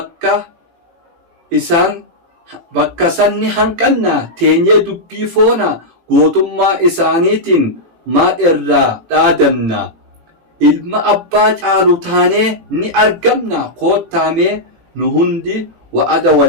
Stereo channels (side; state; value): left; late; 18 ms